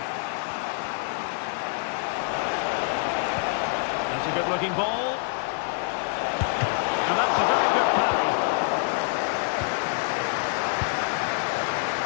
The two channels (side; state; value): right; silent; 58 dB below the other